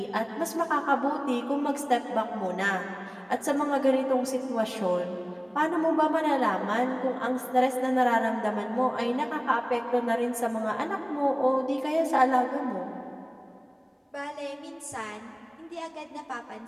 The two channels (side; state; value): both; identical; correlation 1.00